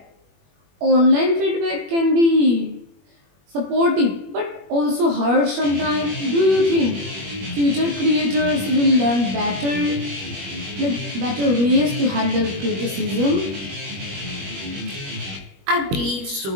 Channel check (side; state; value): left; late; 21 ms